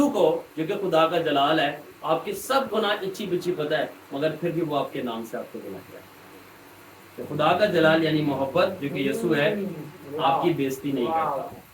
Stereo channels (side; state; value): both; identical; correlation 1.00